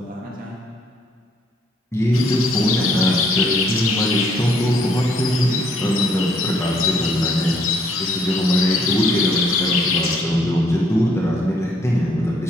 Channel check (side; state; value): both; normal; correlation 0.67